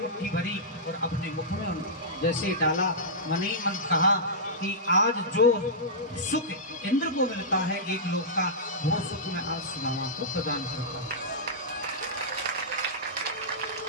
भरी और अपने मुख में जैसे डाला, मन ही मन कहा कि आज जो सुख इंद्र को मिलता है एक लोक का, वो सुख मैं आज सुदामा को प्रदान करता हूं।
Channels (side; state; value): both; normal; correlation -0.14